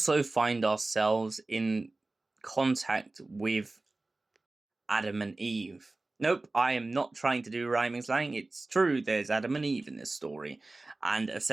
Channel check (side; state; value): left; quieter; 3.1 dB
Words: find ourselves in contact with Adam and Eve. Nope, I am not trying to do rhyming slang. It's true, there's Adam and Eve in this story. And